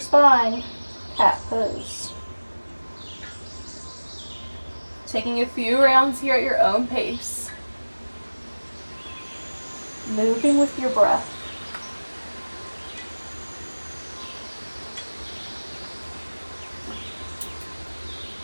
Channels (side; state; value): both; inverted; correlation -1.00